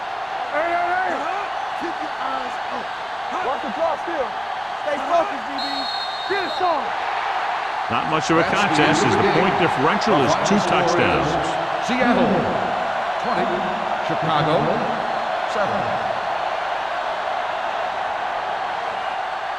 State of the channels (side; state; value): both; identical; correlation 1.00